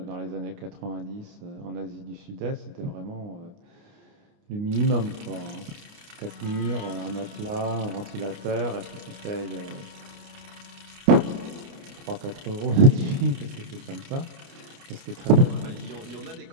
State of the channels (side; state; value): left; late; 29 ms